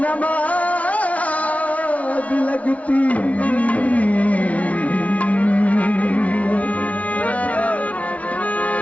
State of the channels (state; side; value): late; right; 0.067 ms